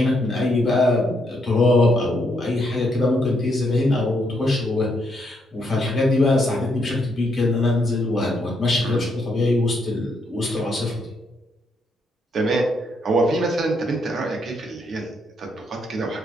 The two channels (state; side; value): normal; both; correlation 0.76